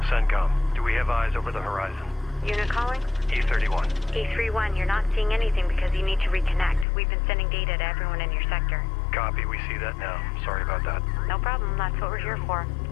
CENTCOM, do we have eyes over the horizon? Unit calling? E31. E31, you're not seeing anything because you need to reconnect. We've been sending data to everyone in your sector. Copy, we see that now. Sorry about that. No problem, that's what we're here for.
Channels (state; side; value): drops out; right; at 6.9 s